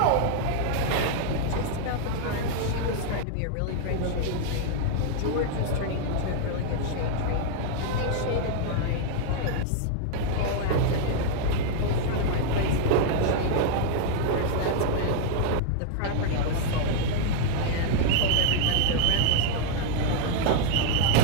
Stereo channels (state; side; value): different; both; correlation -0.01